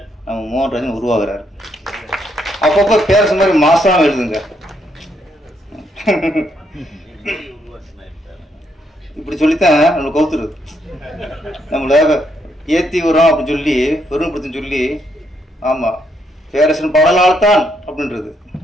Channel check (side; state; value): both; normal; correlation 0.75